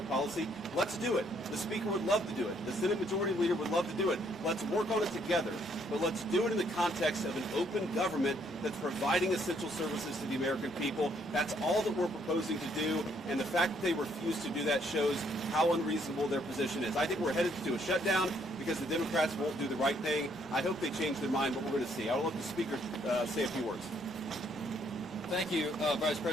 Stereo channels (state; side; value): normal; both; correlation 0.68